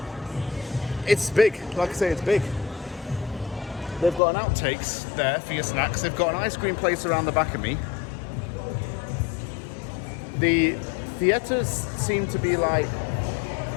it's big. Like I say, it's big. They've got an outtakes there for your snacks. They've got an ice cream place around the back of me. The theatres seem to be like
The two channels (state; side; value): drops out; right; at 4.2 s